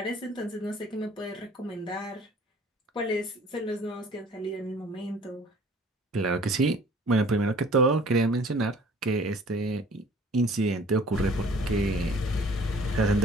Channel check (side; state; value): both; normal; correlation 0.51